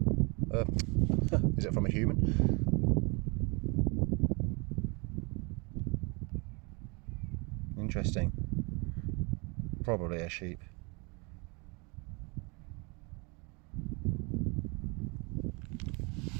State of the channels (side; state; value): left; quieter; 30.5 dB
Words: Is it from a human? Interesting. Probably a sheep.